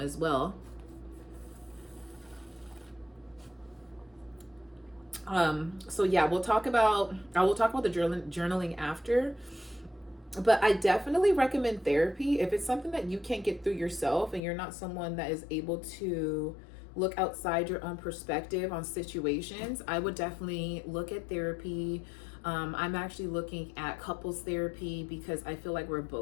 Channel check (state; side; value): drops out; right; at 14.4 s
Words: as well. So yeah, I will talk about the journaling after, but I definitely recommend therapy if it's something that you can't get through yourself and you're not someone that is able to look outside your own perspective on situations. I would definitely look at therapy. I'm actually looking at couples therapy because I feel like we're